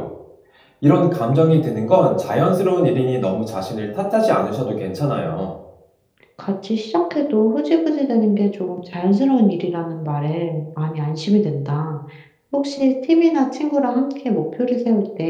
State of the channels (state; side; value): identical; both; correlation 1.00